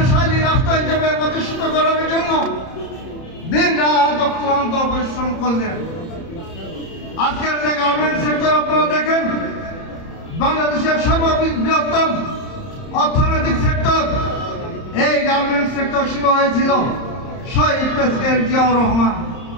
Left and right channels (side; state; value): right; late; 30 ms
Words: রাষ্ট্র হিসেবে প্রতিষ্ঠিত করার জন্য দিন রাত অক্লান্ত পরিশ্রম করলেন। আজকের যে গার্মেন্ট সেক্টর আপনারা দেখেন, বাংলাদেশের সর্ববৃহত্তম অর্থনৈতিক সেক্টর, এই গার্মেন্ট সেক্টর শুরু হয়েছিল শহীদ প্রেসিডেন্ট জিয়াউর রহমান।